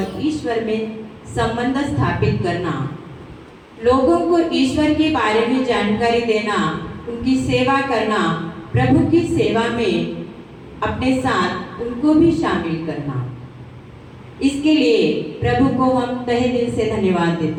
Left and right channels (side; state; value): both; identical; correlation 1.00